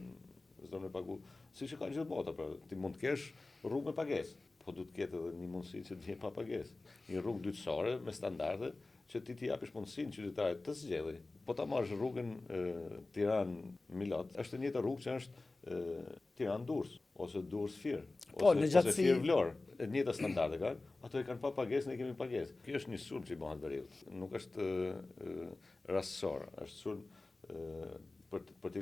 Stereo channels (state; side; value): quieter; right; 3.2 dB